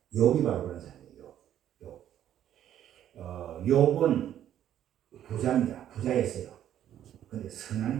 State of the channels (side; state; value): left; quieter; 11.0 dB